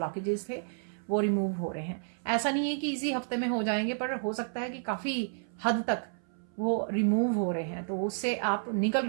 थे वो रिमूव हो रहे हैं। ऐसा नहीं है कि इसी हफ्ते में हो जाएंगे, पर हो सकता है कि काफ़ी हद तक वो रिमूव हो रहे हैं, तो उससे आप निकल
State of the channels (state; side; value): silent; left; 57 dB below the other